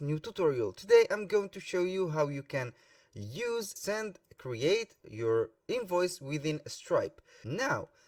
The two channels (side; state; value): both; identical; correlation 1.00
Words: new tutorial. Today I'm going to show you how you can create your invoice within Stripe. Now,